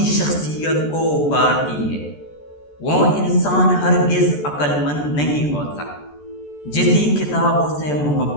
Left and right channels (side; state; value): right; late; 14 ms